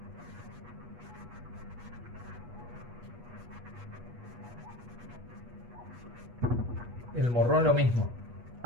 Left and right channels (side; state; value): left; late; 8.3 ms